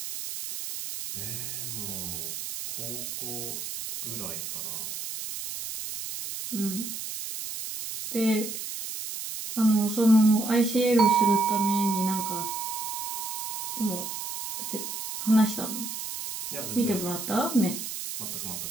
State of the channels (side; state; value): right; noise; hiss, 6 dB below the sound